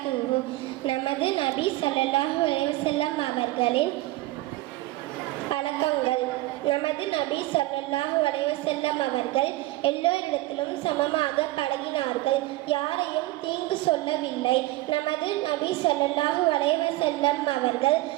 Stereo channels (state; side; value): quieter; left; 18.2 dB